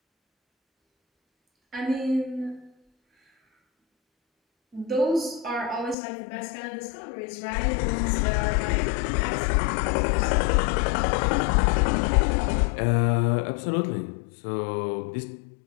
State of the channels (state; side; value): drops out; right; at 6.0 s